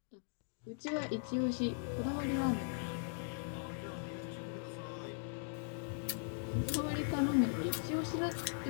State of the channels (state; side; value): silent; right; digital silence